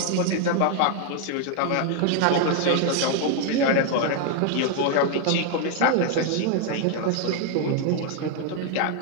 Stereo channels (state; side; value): different; both; correlation 0.00